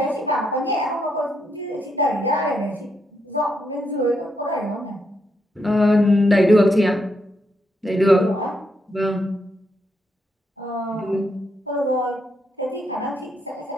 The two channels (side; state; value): both; normal; correlation 0.79